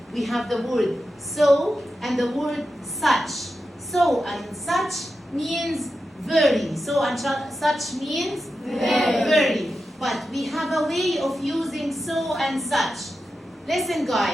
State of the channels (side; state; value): both; normal; correlation 0.90